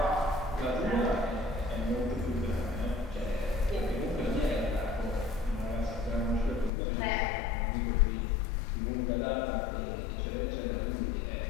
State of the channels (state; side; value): drops out; right; at 6.7 s